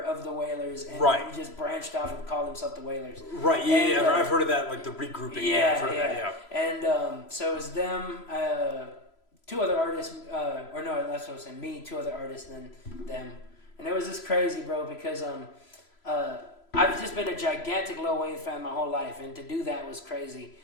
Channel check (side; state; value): right; late; 3.0 ms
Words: of the Wailers, and he just branched off and called himself the Wailers. Right. Yeah. I've heard of that, the regrouping. Yeah. And so it was them, 2 other artists, that's what I was saying. Me, 2 other artists, and then them. And it was just crazy, bro, because I've just been a gigantic Lil Wayne fan my whole life, and to do that was crazy.